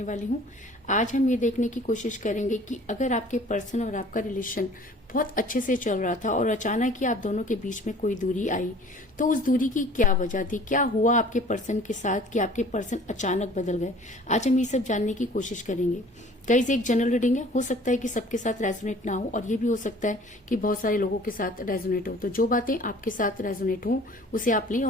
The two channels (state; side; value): normal; both; correlation 0.49